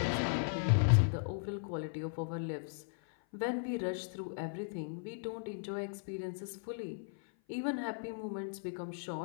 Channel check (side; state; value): right; silent; 53 dB below the other